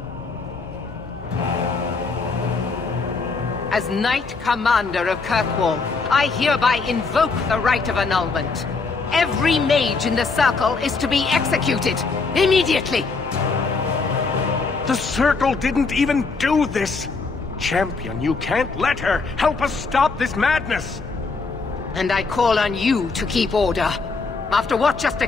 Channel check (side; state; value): right; quieter; 4.3 dB